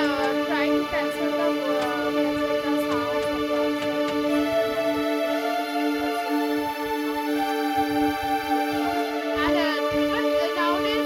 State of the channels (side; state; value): both; identical; correlation 1.00